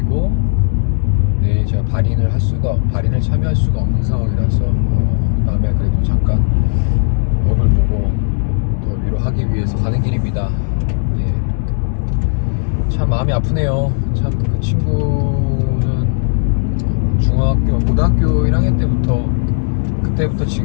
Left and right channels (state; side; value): silent; right; digital silence